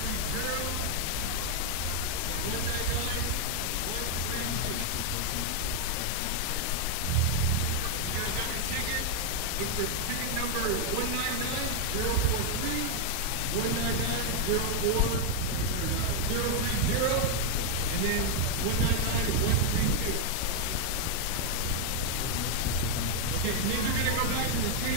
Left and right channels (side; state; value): both; different; correlation 0.00